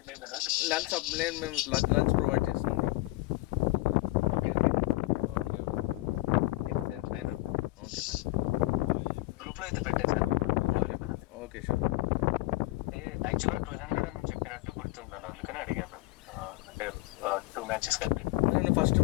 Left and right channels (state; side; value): quieter; right; 20.1 dB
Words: లంచ్ నేను మేము లంచ్ ప్రొవైడ్ చేస్తాం. గ్రూప్ లో అయితే పెట్టేసాను. Okay sure. యాక్చువల్గా 200 అని చెప్పినట్టు గుర్తున్నాను, అందుకని అడిగాను. అంటే 2 matches కాబట్టి నేను ఫస్ట్